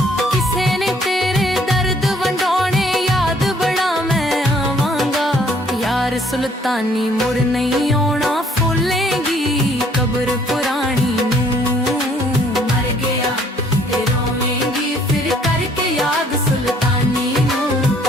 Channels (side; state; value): both; normal; correlation 0.62